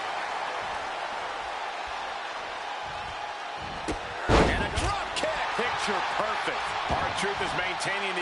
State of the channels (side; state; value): both; identical; correlation 1.00